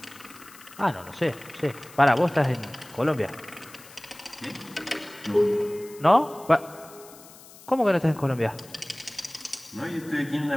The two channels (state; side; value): noise; left; hiss, 20 dB below the sound